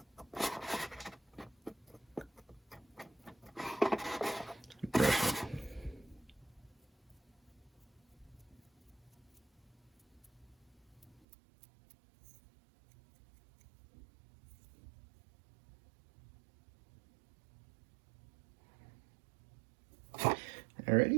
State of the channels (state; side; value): drops out; left; at 11.2 s